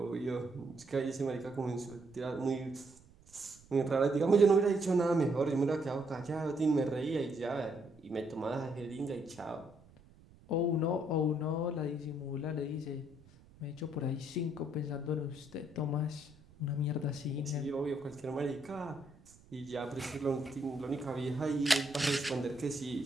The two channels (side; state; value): right; noise; rumble, 25 dB below the sound